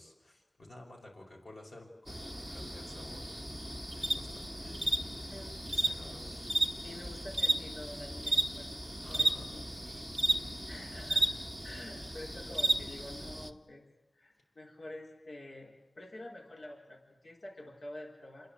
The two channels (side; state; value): both; normal; correlation 0.94